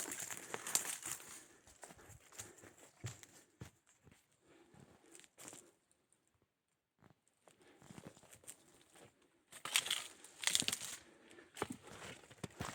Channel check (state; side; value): identical; both; correlation 1.00